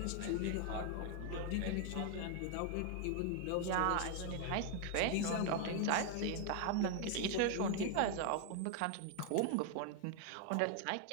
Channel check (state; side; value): different; both; correlation 0.00